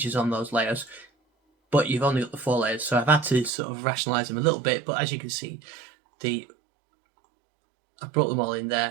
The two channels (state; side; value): drops out; left; at 3.5 s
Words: on those layers, but you've only got the 4 layers, so I've had to sort of rationalise them a little bit, but as you can see, I've brought them all in